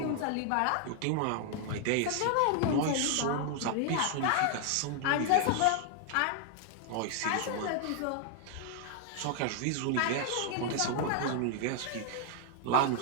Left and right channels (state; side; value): different; both; correlation 0.00